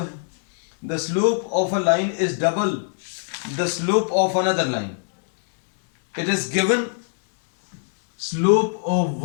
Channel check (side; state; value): right; silent; digital silence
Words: है. The slope of a line is double the slope of another line. It is given slope of